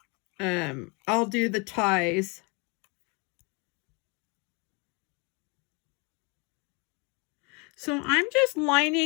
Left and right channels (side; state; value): right; quieter; 31.2 dB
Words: I'll do the ties. So I'm just